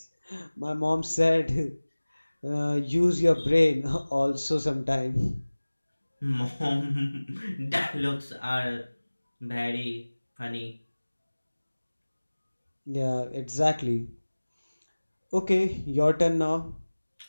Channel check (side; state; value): both; inverted; correlation -1.00